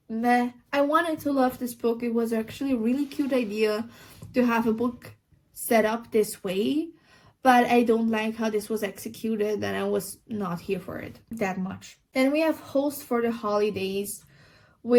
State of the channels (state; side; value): identical; both; correlation 1.00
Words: meh. I wanted to love this book. It was actually a really cute idea to have a book set up this way, but I don't like how this was executed, and I was not here for it that much. Then we have Host for the Holidays,